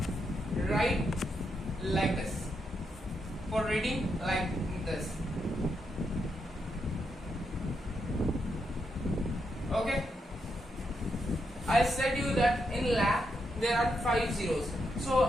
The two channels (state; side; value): normal; both; correlation 0.82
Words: Write like this. For reading, like this. Okay. I said you that in lakh there are 5 zeros. So